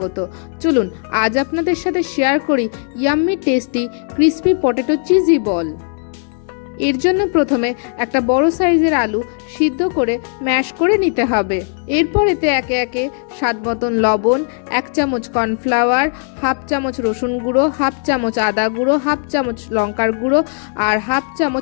চলুন আজ আপনাদের সাথে শেয়ার করি yummy tasty crispy potato cheesy ball. এর জন্য প্রথমে একটা বড় সাইজের আলু সিদ্ধ করে ম্যাশ করে নিতে হবে। এরপর এতে একে একে স্বাদ মতন লবণ, 1 চামচ কর্নফ্লাওয়ার, হাফ চামচ রসুন গুঁড়ো, হাফ চামচ আদা গুঁড়ো, হাফ চামচ লঙ্কার গুঁড়ো আর হাফ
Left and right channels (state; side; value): silent; right; 57 dB below the other